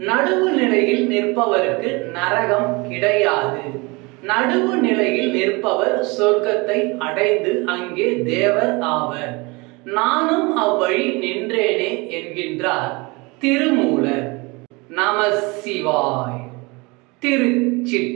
நடுவு நிலையில் நிற்பவருக்கு நரகம் கிடையாது. நடுவு நிலையில் நிற்பவர் சொர்க்கத்தை அடைந்து அங்கே தேவர் ஆவர். நானும் அவ்வழி நின்றேனே என்கின்றார் திருமூலர். நம சிவாய்.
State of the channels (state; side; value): quieter; left; 26.3 dB